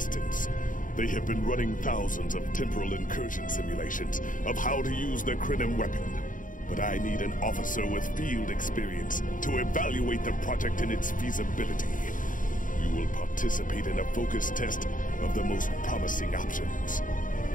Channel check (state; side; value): late; right; 0.38 ms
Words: They have been running thousands of temporal incursion simulations of how to use the Klingon weapon. But I need an officer with field experience to evaluate the project in its feasibility. You will participate in a focus test of the most promising options.